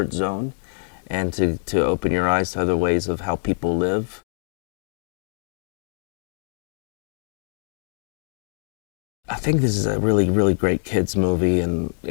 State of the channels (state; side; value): silent; right; digital silence